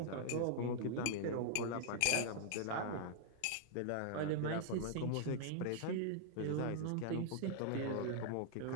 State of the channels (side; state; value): both; different; correlation -0.01